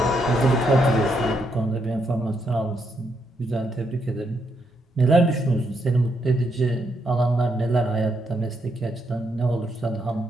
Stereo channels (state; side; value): normal; both; correlation 0.78